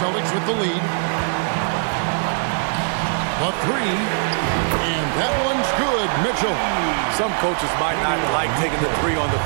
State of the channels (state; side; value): silent; left; 59 dB below the other